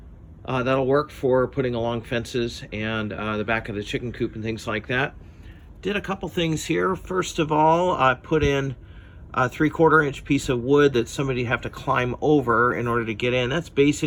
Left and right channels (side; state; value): both; identical; correlation 1.00